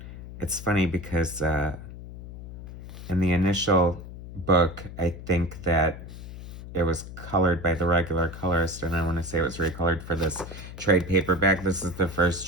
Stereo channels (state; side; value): noise; left; hum, 12 dB below the sound